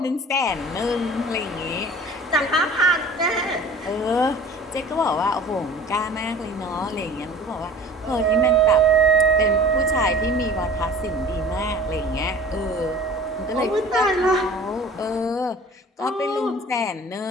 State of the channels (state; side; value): normal; both; correlation 0.44